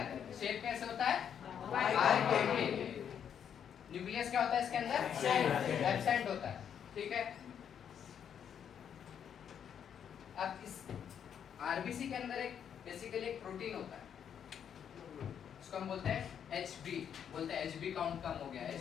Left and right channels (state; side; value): quieter; right; 8.4 dB